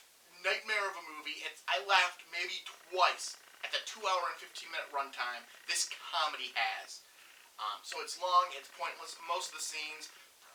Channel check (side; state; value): both; identical; correlation 1.00